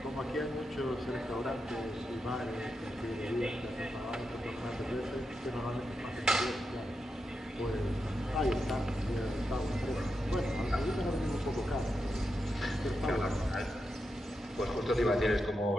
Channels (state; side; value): normal; both; correlation 0.87